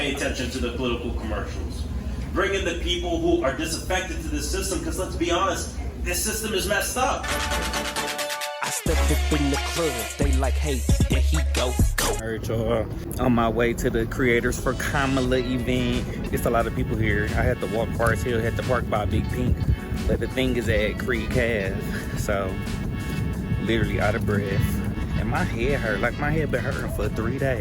attention to the political commercials, bring in the people who are disaffected to this system, because let's be honest, this system is messed up. I stepped up in the club, they like, hey, there he go. Alright, y'all, on my way to the Creators for Kamala event. It's a lot of people here. I had to walk Forest Hill, had to park by Big Pink, but the thing is at Creek Ave, so literally out of breath. And my head hurt, like my head been hurting for 3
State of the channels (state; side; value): identical; both; correlation 1.00